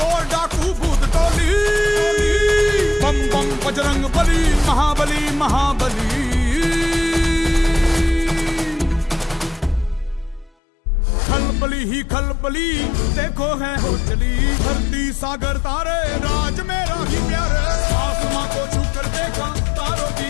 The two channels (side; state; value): right; drops out; at 10.6 s